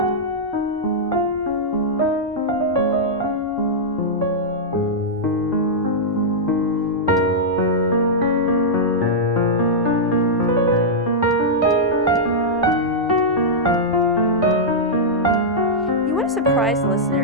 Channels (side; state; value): both; normal; correlation -0.08